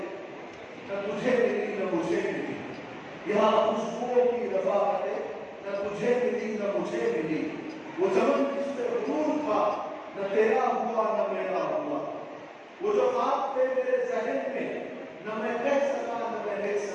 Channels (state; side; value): identical; both; correlation 1.00